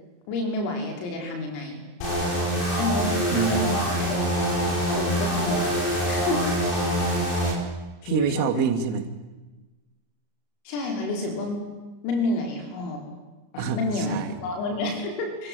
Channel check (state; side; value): late; right; 34 ms